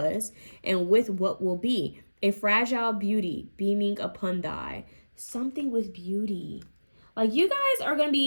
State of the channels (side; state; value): both; inverted; correlation -1.00